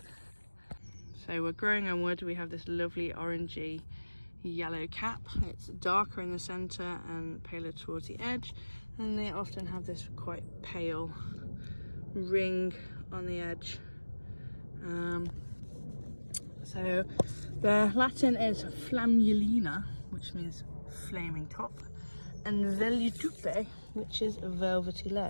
So we're growing on wood. We have this lovely orangey yellow cap. It's darker in the centre and paler towards the edge, and they often have this quite pale ring on the edge. So the Latin is flammulina, which means flaming top, and vellutupe, which is a velvety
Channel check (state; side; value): inverted; both; correlation -1.00